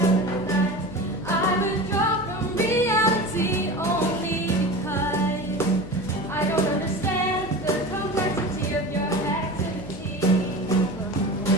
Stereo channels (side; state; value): left; noise; hum, 14 dB below the sound